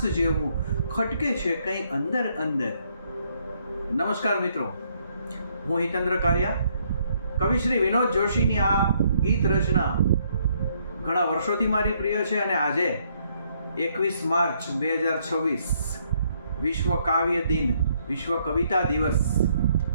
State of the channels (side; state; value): both; inverted; correlation -0.70